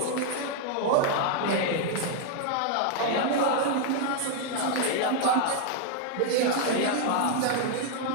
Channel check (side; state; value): both; different; correlation 0.00